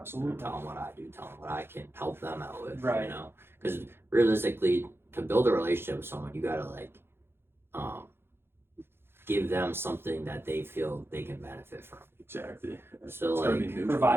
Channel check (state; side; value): late; left; 0.11 ms